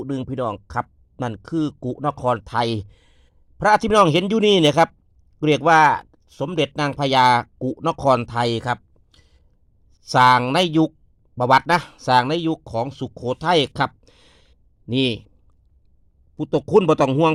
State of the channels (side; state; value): both; identical; correlation 1.00